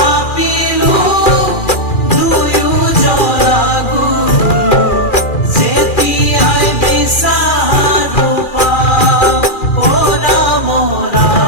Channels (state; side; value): late; right; 2.4 ms